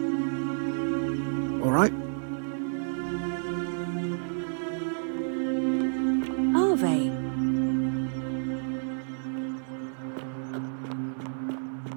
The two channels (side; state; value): left; silent; 58 dB below the other